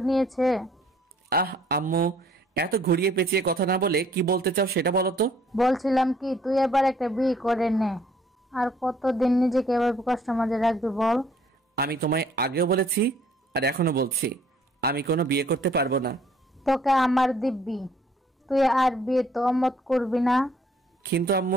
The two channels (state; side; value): normal; both; correlation 0.61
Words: নিয়েছে? আহ আম্মু, এত ঘুরিয়ে পেঁচিয়ে কথা না বলে কি বলতে চাও সেটা বলো তো। বলছিলাম কি, তুই এবার একটা বিয়ে করে নে। আর কতদিন নিজেকে এভাবে কষ্ট মাঝে রাখবি বল? আমি তোমায় আগেও বলেছি আর এখনো বলছি, আমি কোনো বিয়ে করতে পারবো না। তোকে আমার দিব্যি, তুই আর বিয়ে তো অমত করবি না। কিন্তু